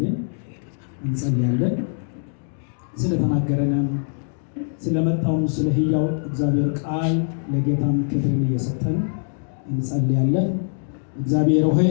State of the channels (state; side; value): silent; right; digital silence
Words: እንጸልያለን። ስለተናገረንም ስለመጣውም ስለ ሕያው እግዚአብሔር ቃል ለጌታም ክብርን እየሰጠን እንጸልያለን። እግዚአብሔር ሆይ